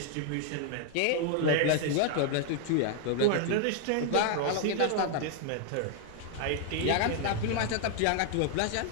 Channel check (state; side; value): different; both; correlation 0.00